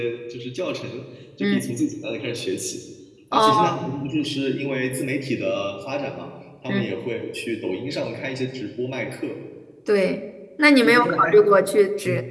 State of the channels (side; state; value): both; identical; correlation 1.00